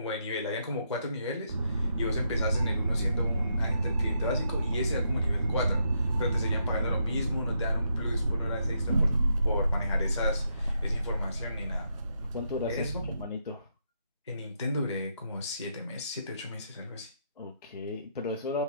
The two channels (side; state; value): both; inverted; correlation -0.78